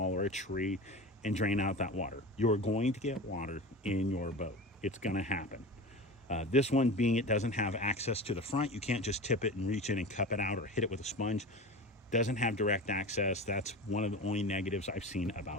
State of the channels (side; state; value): both; normal; correlation 0.31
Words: or a tree, and drain out that water. You're going to get water in your boat. It's going to happen. This one being it doesn't have access to the front. You can't just tip it and reach in and cup it out or hit it with a sponge. Doesn't have direct access. That's one of the only negatives I've seen